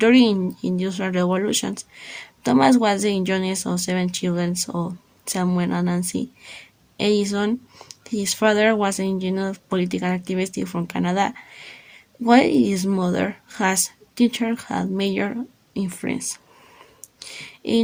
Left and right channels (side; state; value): both; identical; correlation 1.00